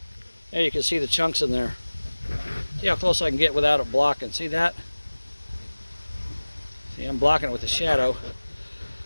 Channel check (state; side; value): inverted; both; correlation -1.00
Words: Yeah, you can see the chunks in there. See how close I can get without it blocking. See that? See, I'm blocking it with the shadow.